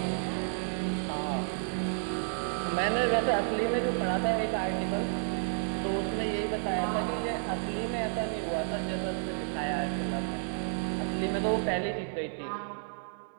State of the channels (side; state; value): left; silent; digital silence